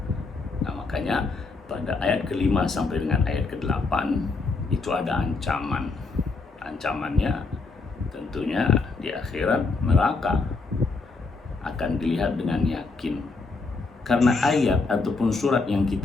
Nah makanya pada ayat ke-5 sampai dengan ayat ke-8 itu ada ancaman. Ancamannya tentunya di akhirat neraka akan dilihat dengan yakin. Karena ayat ataupun surat yang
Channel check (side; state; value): right; quieter; 4.0 dB